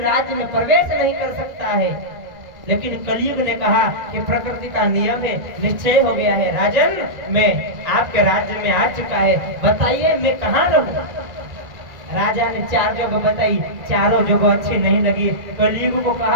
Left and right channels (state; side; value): late; left; 1.9 ms